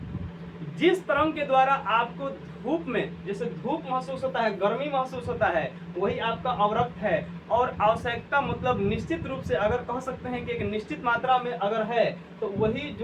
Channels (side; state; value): both; identical; correlation 1.00